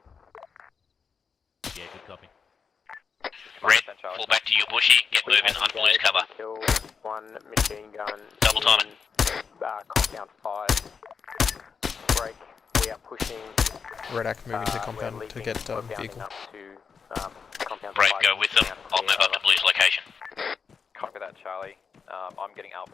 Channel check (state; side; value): quieter; right; 5.9 dB